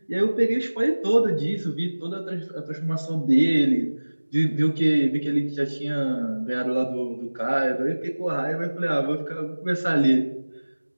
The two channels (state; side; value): inverted; both; correlation -1.00